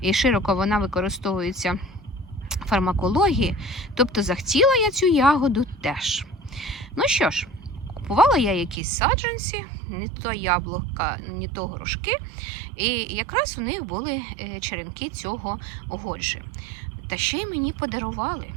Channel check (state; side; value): drops out; left; at 8.8 s